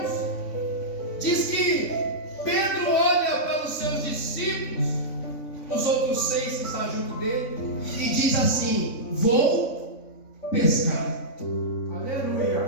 diz que Pedro olha para os seus discípulos, os outros 6 que estão junto dele, e diz assim: vou pescar.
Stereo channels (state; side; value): late; right; 3.5 ms